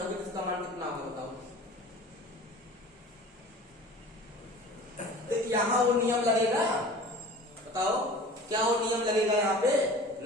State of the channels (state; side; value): normal; both; correlation 0.41